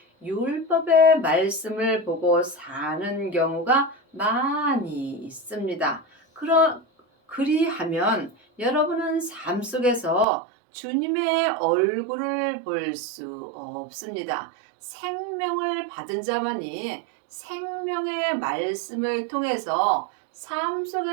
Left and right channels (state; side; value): drops out; left; at 10.2 s